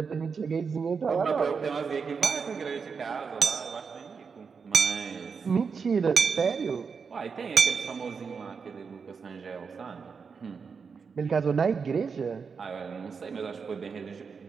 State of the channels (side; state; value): left; quieter; 5.6 dB